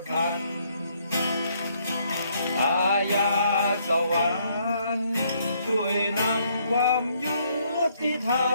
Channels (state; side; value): inverted; both; correlation -0.69